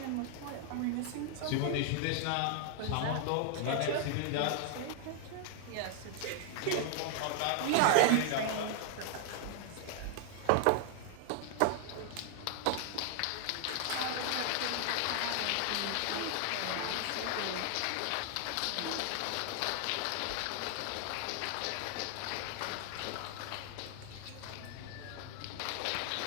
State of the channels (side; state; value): both; different; correlation 0.00